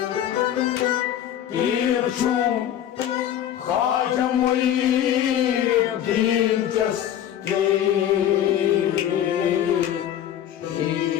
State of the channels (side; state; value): right; quieter; 10.7 dB